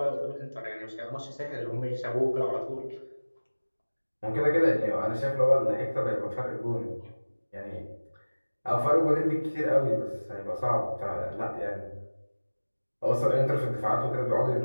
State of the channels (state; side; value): inverted; both; correlation -1.00